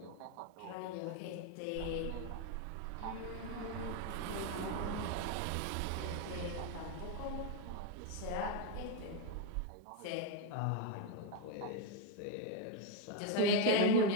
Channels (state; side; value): different; both; correlation 0.02